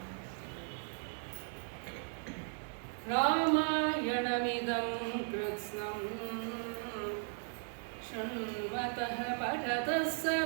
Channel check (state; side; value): silent; left; 53 dB below the other